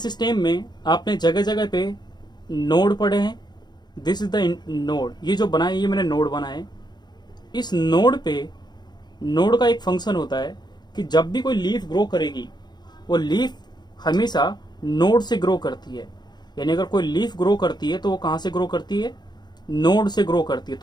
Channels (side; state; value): right; late; 0.21 ms